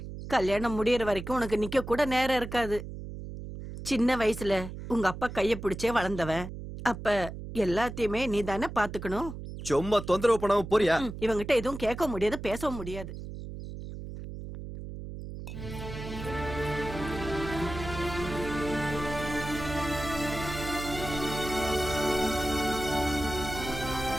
கல்யாணம் முடியற வரைக்கும் உனக்கு நிக்க கூட நேரம் இருக்காது. சின்ன வயசுல உங்க அப்பா கைய பிடிச்சே வளர்ந்தவன். அப்ப எல்லாத்தையுமே நீ தானே பாத்துக்கணும். சும்மா தொந்தரவு பண்ணாம போறியா? இவங்கிட்ட எதுவும் கேட்க முடியாது, பேசவும் முடியாது.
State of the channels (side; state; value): right; noise; hum, 9 dB below the sound